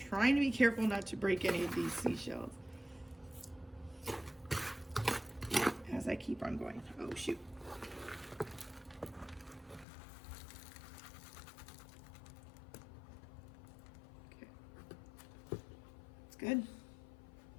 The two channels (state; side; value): drops out; right; at 9.9 s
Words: to be careful not to break any of these seashells as I keep on going. Oh shoot. Okay. good.